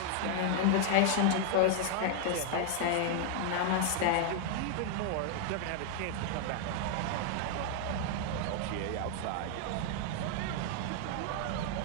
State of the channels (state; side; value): different; both; correlation 0.00